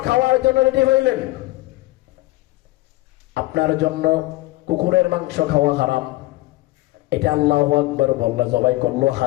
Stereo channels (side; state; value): right; quieter; 19.4 dB